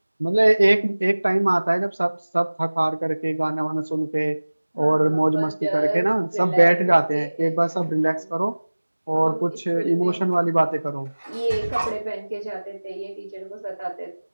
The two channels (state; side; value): inverted; both; correlation -1.00